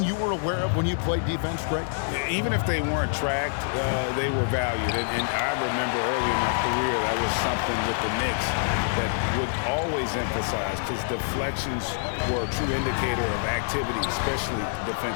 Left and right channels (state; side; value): silent; right; 61 dB below the other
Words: you were aware of when you played defense, Greg? Even if they weren't tracked, they were valued. And I remember early in my career, that was something with the Knicks that would always emphasize, because deflections were a true indicator of activity, especially